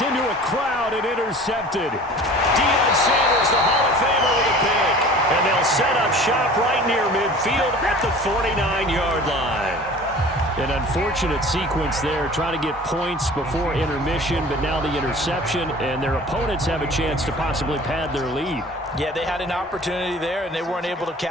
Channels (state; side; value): normal; both; correlation 0.43